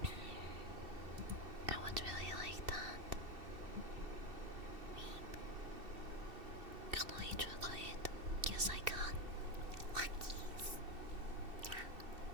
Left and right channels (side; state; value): left; late; 2.7 ms